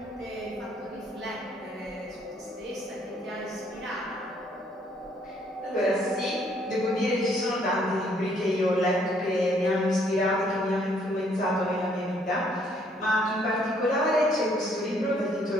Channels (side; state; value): both; normal; correlation 0.66